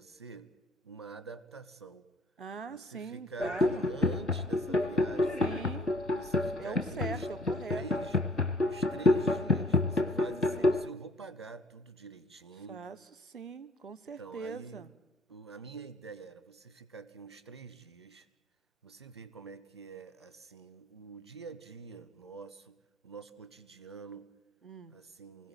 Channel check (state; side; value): normal; both; correlation 0.57